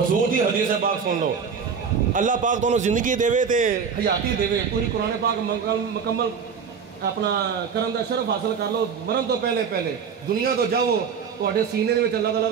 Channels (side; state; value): left; quieter; 6.4 dB